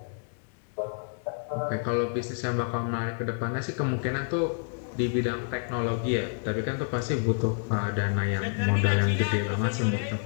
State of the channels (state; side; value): silent; right; 59 dB below the other